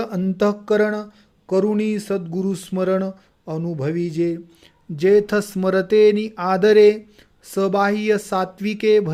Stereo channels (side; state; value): both; identical; correlation 1.00